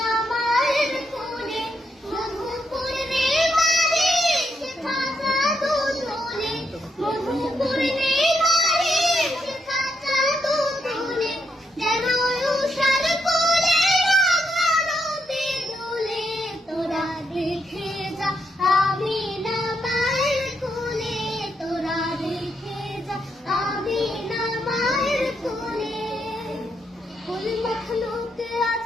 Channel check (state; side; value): normal; both; correlation 0.79